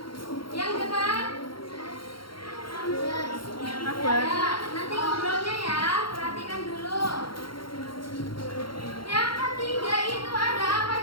Yang depan. Ya, nanti ngobrolnya ya. Perhatikan dulu. Yang ketiga itu ada apa?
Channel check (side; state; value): right; late; 0.73 ms